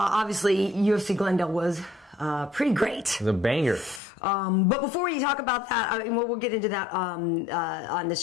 UFC Glendale was pretty great. It was a banger. But before we talk about that, I mean, we'll get into that on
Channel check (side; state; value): right; drops out; at 4.0 s